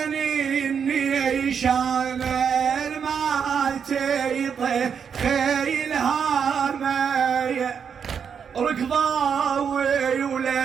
النيشان ما تيطي خيلها مايه ركضاوي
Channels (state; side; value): quieter; left; 7.0 dB